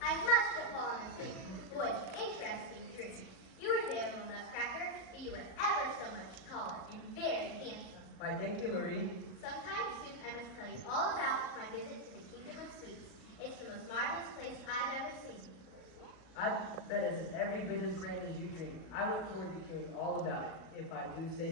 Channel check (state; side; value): late; right; 37 ms